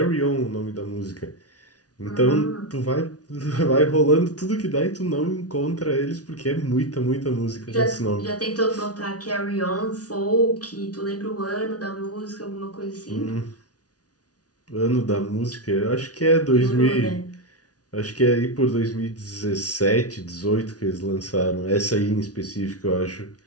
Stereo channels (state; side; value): late; right; 0.68 ms